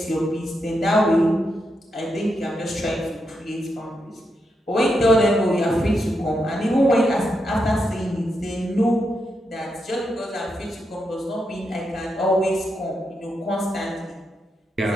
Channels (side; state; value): both; normal; correlation 0.83